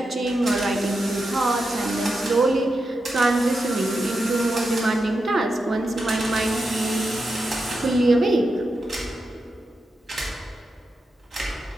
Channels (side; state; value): both; normal; correlation 0.88